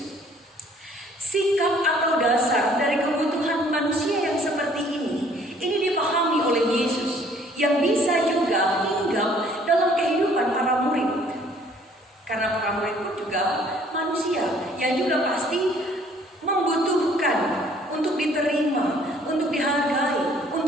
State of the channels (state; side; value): normal; both; correlation 0.59